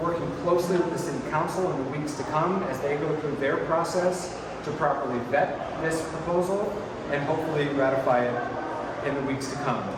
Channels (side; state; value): both; identical; correlation 1.00